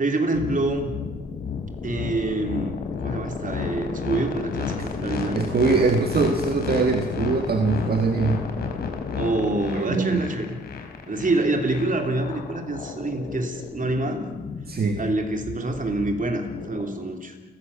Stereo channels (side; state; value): both; normal; correlation 0.58